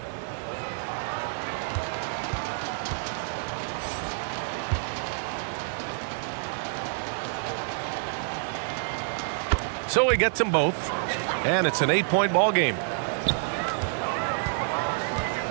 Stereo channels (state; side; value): silent; left; digital silence